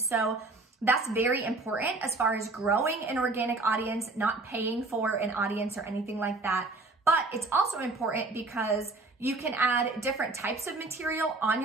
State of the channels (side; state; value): left; quieter; 3.4 dB